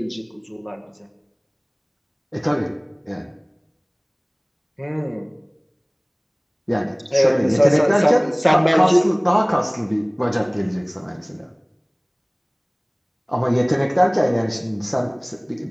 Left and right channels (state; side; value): identical; both; correlation 1.00